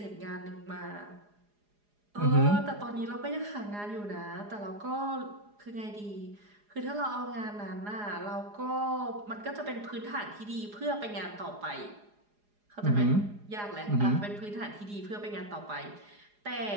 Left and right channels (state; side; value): late; left; 4.8 ms